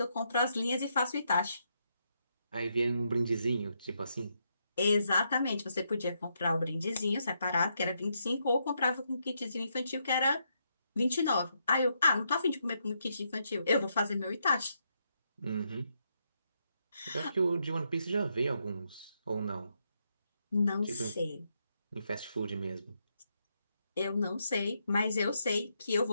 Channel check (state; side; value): inverted; both; correlation -0.79